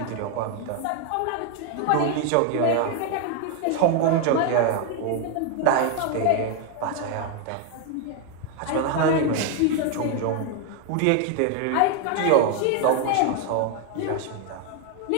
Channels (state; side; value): different; both; correlation 0.01